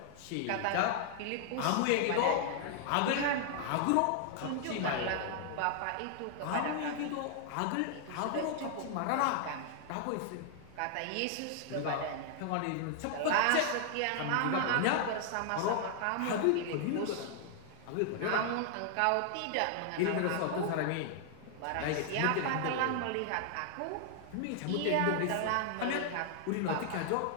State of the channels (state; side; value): different; both; correlation 0.00